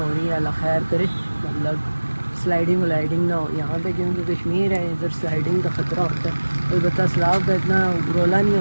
رہی ہیں، اللہ خیر کرے. مطلب سلائڈنگ ولائڈنگ نہ ہو یہاں پہ، کیونکہ کشمیر ہے، ادھر سلائڈنگ کا خطرہ ہوتا ہے. البتہ سیلاب کا اتنا رولا نہیں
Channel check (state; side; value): inverted; both; correlation -1.00